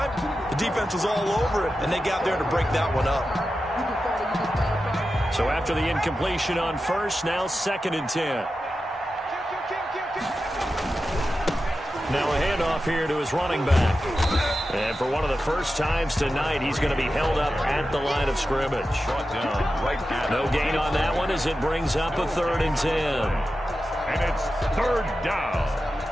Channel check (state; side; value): normal; both; correlation 0.92